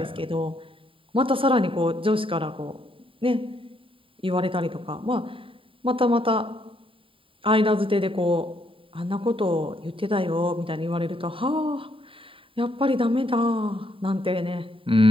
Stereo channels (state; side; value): late; left; 0.26 ms